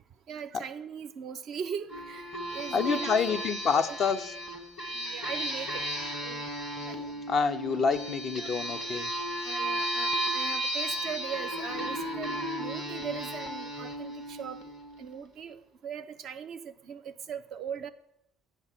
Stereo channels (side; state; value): both; normal; correlation 0.57